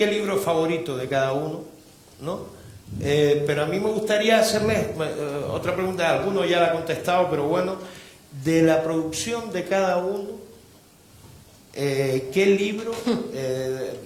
libro favorito de cada uno, ¿no? Pero a mí me gustaría hacerles otra pregunta, alguno ya la ha contestado, pero bueno, de la producción de cada uno, ¿qué libro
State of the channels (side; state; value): both; identical; correlation 1.00